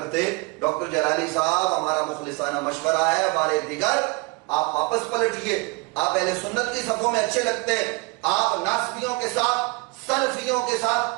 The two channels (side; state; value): left; quieter; 26.6 dB